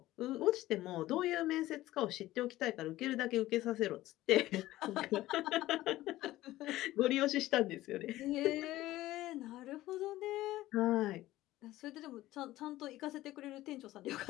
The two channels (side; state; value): right; quieter; 16.1 dB